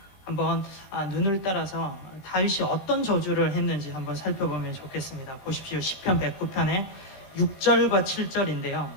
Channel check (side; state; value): right; late; 20 ms